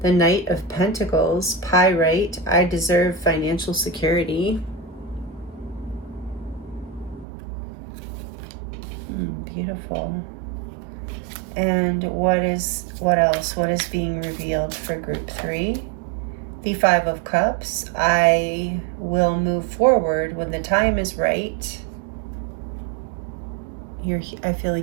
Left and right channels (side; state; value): left; drops out; at 7.2 s